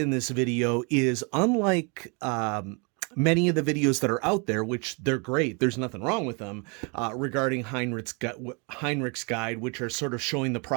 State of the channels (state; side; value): quieter; left; 33.2 dB